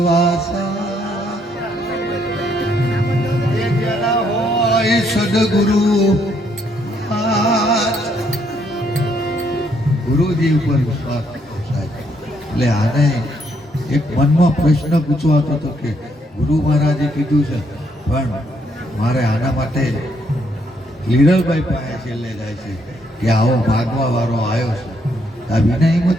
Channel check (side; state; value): both; normal; correlation 0.72